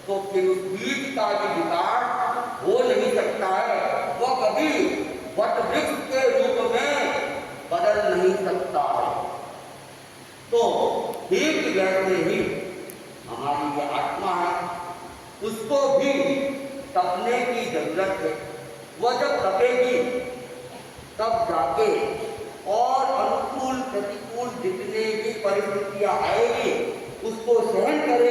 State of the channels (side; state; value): both; identical; correlation 1.00